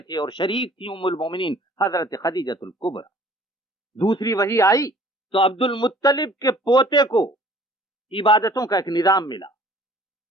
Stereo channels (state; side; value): normal; both; correlation 0.53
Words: اور شریک تھی ام المومنین حضرت خدیجۃ الکبریٰ۔ دوسری وحی آئی تو عبد المطلب کے پوتے کو عبادتوں کا ایک نظام ملا۔